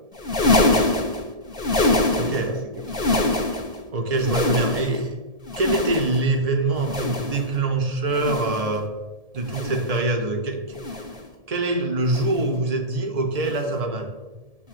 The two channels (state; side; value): late; left; 1.7 ms